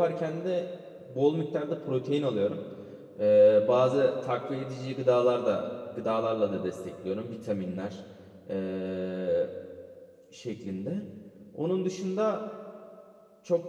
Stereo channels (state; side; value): identical; both; correlation 1.00